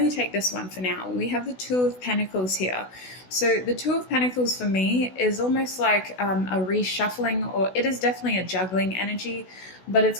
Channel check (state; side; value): late; right; 16 ms